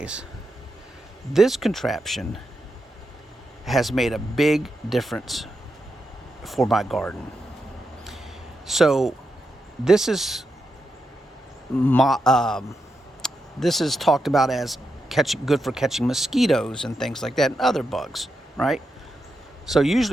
this contraption has made a big difference for my garden. So this is talked about as good for catching mosquitoes and things like that, and other bugs, right? So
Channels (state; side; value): normal; both; correlation 0.86